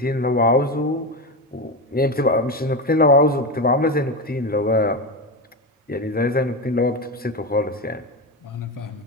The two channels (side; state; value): both; normal; correlation 0.17